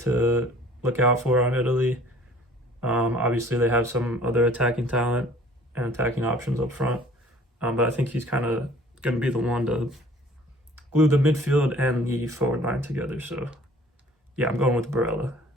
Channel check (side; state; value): both; normal; correlation 0.52